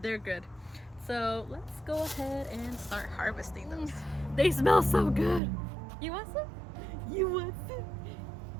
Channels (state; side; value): drops out; left; at 5.4 s